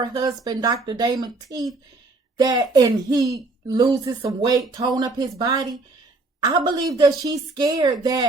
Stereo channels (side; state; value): left; quieter; 3.3 dB